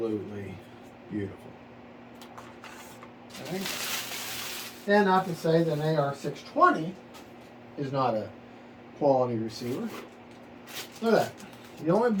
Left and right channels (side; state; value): both; identical; correlation 1.00